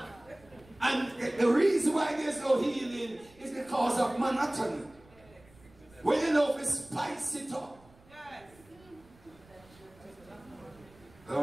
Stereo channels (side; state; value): right; noise; rumble, 26 dB below the sound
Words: And the reason why there's no healing is because of monotony. When you know to spice it up.